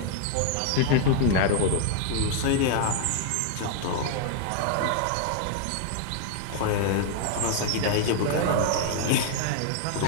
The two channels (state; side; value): different; both; correlation 0.00